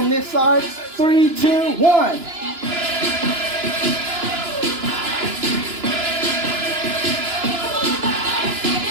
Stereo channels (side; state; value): left; late; 2.9 ms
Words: this side, 3, 2, 1.